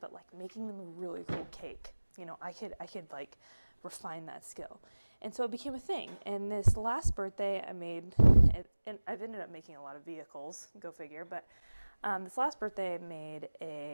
but like making them a really cool cake. I could like refine that skill. And so it became a thing. And this last birthday I made it, and I've ended up making a lot of vehicles, go figure, but this last birthday I made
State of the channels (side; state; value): both; inverted; correlation -1.00